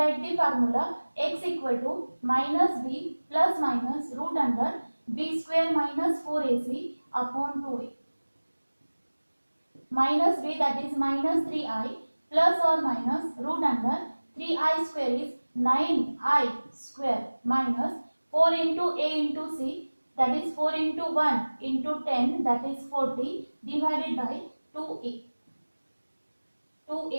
the formula x equal to minus b plus minus root under b square minus 4ac upon 2a. Minus b, that is minus 3i, plus or minus root under 3i square is 9i square minus 4 into a into c, that is 4 into 1 into 10, that is 40 divided by 2a.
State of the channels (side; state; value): both; inverted; correlation -1.00